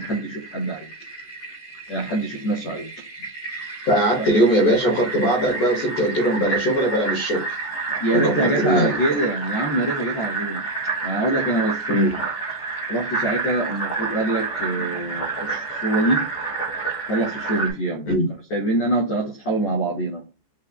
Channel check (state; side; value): late; right; 14 ms